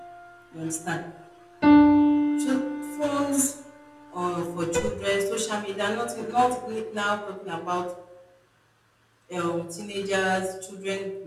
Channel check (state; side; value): identical; both; correlation 1.00